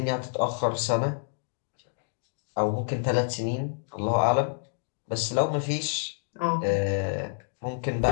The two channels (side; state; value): right; silent; digital silence